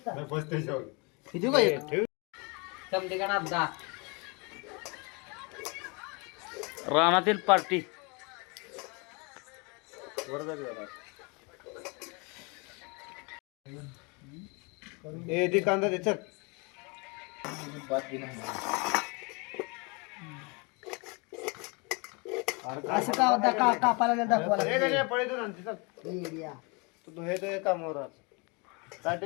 रानातील पार्टी ए ती कांदा दे चल. असं का कापायला दाखवायला ए गण्या, पळे दोन आणते चल. तू हे तो कामावर आज ताट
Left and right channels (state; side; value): quieter; right; 30.4 dB